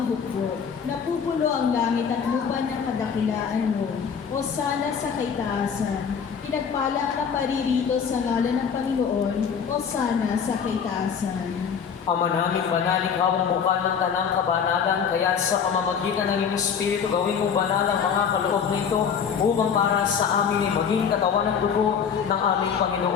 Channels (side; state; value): right; quieter; 6.9 dB